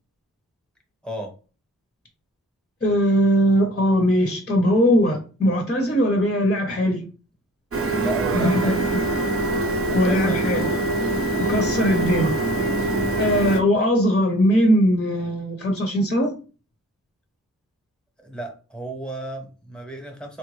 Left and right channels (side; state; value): both; normal; correlation 0.51